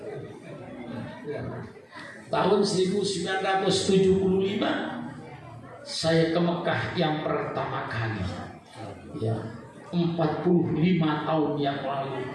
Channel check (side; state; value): both; identical; correlation 1.00